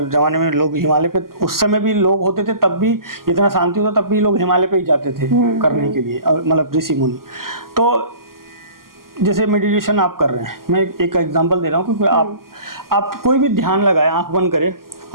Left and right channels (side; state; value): left; late; 0.92 ms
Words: ज़माने में लोग हिमालय पे, उस समय भी लोग होते थे, तब भी इतना शांति होता, तब भी लोग हिमालय पे ही जाते थे करने के लिए, मतलब ऋषि मुनि। तो जैसे मेडिटेशन आप कर रहे हैं, मैं एक एग्जांपल दे रहा हूँ, क्योंकि आप कोई भी ध्यान लगाए, आंख बंद करें